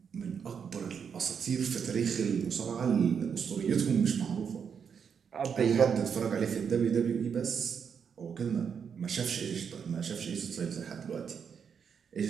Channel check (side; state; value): left; quieter; 6.9 dB